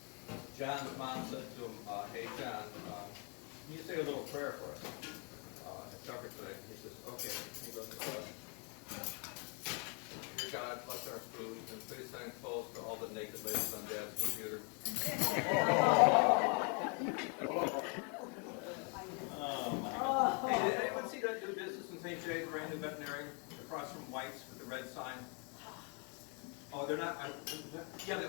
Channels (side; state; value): right; quieter; 36.3 dB